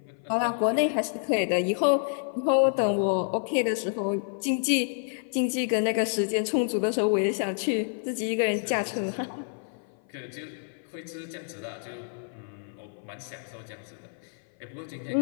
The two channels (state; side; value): silent; right; 57 dB below the other